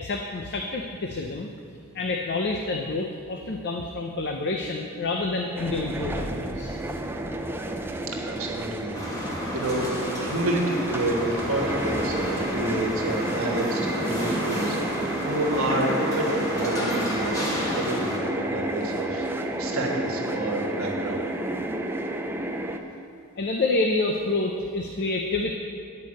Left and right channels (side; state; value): both; normal; correlation 0.29